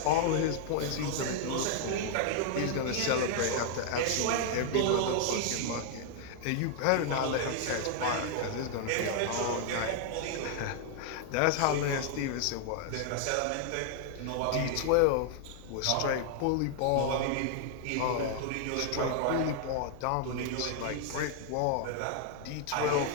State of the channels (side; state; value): both; different; correlation 0.00